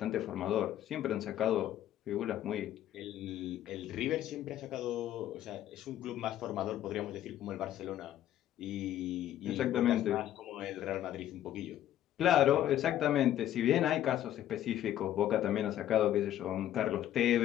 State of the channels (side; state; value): right; quieter; 12.1 dB